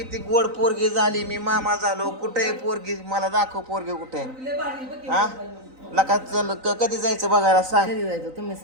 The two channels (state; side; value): late; left; 3.9 ms